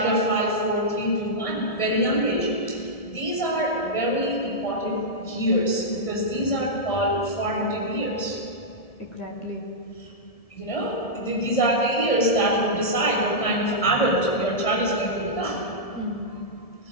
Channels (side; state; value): right; late; 1.7 ms